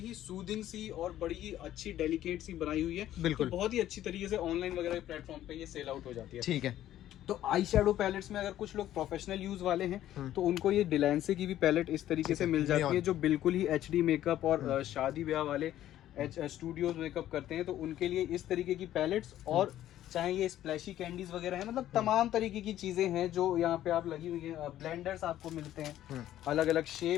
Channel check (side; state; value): right; quieter; 12.7 dB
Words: सूदिंग सी और बड़ी ही अच्छी डेलिकेट सी बनाई हुई है। बिल्कुल। तो बहुत ही अच्छी तरीके से ऑनलाइन वगैरह प्लेटफॉर्म पे ये सेल आउट हो जाती है। ठीक है। तो आई शेडो पैलेट्स में अगर कुछ लोग प्रोफेशनल यूज वाले हैं तो उनको ये डिलैंसे की भी पैलेट इस तरीके से मिल जाती है, जो बिल्कुल ही HD मेकअप और शादी ब्याह वाले स्टूडियोज मेकअप करते हैं, तो उनके लिए इस तरीके की पैलेट्स, और चाहे ये स्प्लैशी कैंडीज वगैरह है, मतलब तमाम तरीके की चीजें हैं जो यहाँ पे आप लगी हुई है। ब्लेंडर्स आपको मिलते हैं, अलग अलग